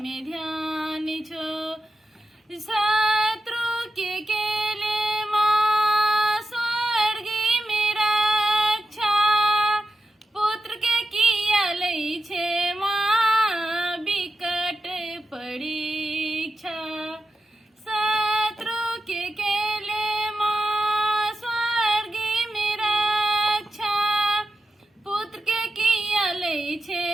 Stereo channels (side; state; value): both; normal; correlation 0.90